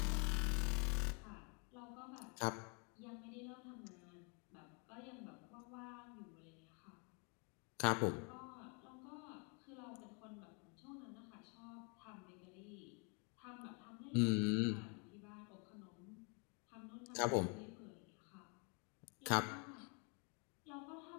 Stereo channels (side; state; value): right; quieter; 35.8 dB